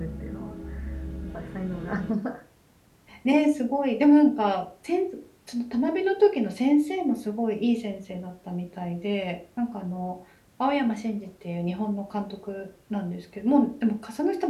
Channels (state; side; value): identical; both; correlation 1.00